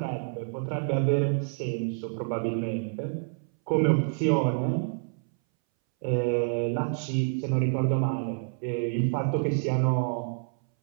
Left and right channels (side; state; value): left; silent; 59 dB below the other